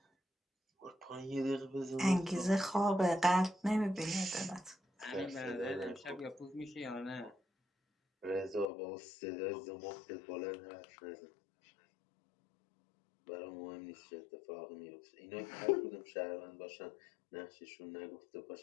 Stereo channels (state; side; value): drops out; right; at 8.7 s